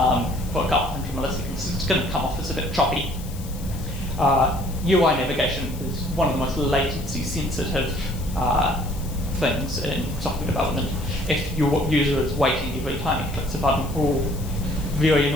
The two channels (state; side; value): noise; left; hiss, 17 dB below the sound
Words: for a couple hundred milliseconds. It's going to come off as a bit choppy. UI navigation is one of the most latency sensitive things in software development. If your user is waiting every time it clicks a button, all very